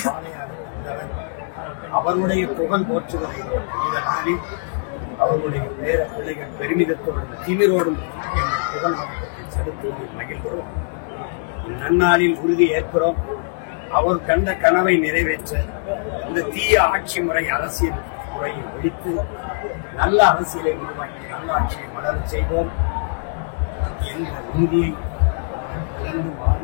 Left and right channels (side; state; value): right; silent; 61 dB below the other